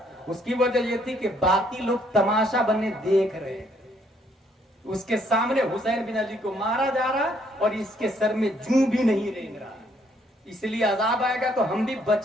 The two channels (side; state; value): both; normal; correlation 0.68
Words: اس کی وجہ یہ تھی کہ باقی لوگ تماشا بننے دیکھ رہے. اس کے سامنے حسین بن علی کو مارا جا رہا اور اس کے سر میں جوں بھی نہیں رینگ رہا. اس لیے عذاب آئے گا تو ہم بھی